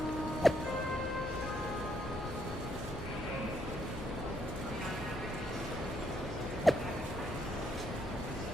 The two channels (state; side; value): noise; left; hum, 11 dB below the sound